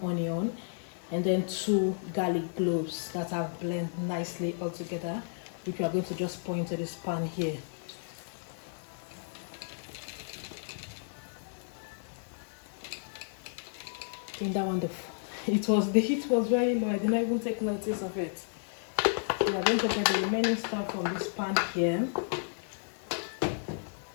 onion and then 2 garlic cloves that I've blended nicely all together, which we are going to just pour into this pan here. I think that one, the heat was very low. I didn't even take notice of it. We are going to get the remaining stuff from this pan here.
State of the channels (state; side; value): silent; right; digital silence